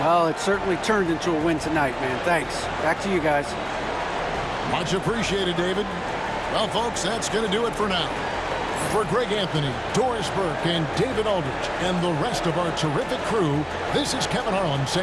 Well, it certainly turned into a win tonight, man. Thanks. Back to you guys. Much appreciated, David. Well, folks, that's going to do it for now. For Greg Anthony, Doris Burke, and David Aldridge, and the rest of our terrific crew, this is Kevin Harlan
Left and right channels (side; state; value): both; identical; correlation 1.00